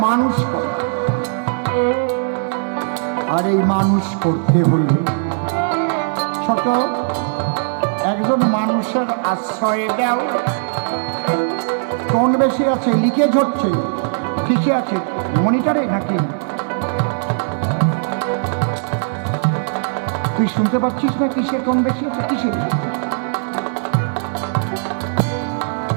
মানুষ করা। আর এই মানুষ করতে হলে ছোট একজন মানুষের আশ্রয় দাও। কোন বেশি আছে? লিকেজ হচ্ছে, কিসে আছে? মনিটরে নাকি? তুই শুনতে পাচ্ছিস না কিসের কোন বেশি আছে? কিসের?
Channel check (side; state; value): left; silent; digital silence